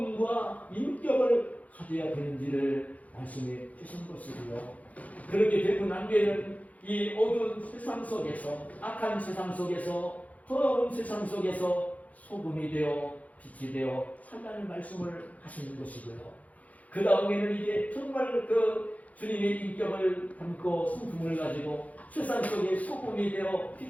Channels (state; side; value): late; right; 0.072 ms